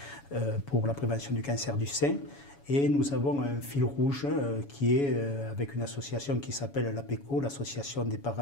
pour la prévention du cancer du sein. Et nous avons un fil rouge qui est avec une association qui s'appelle l'APECO, l'Association des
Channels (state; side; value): late; right; 7.1 ms